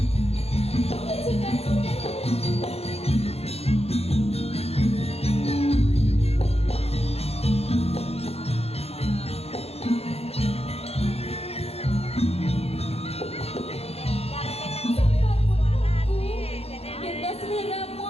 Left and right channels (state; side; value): late; right; 0.29 ms